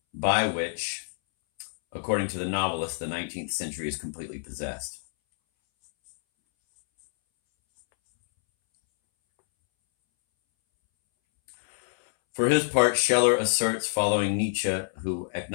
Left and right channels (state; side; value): silent; right; 60 dB below the other